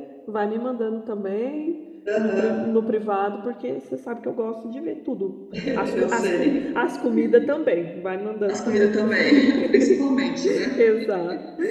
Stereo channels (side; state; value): both; identical; correlation 1.00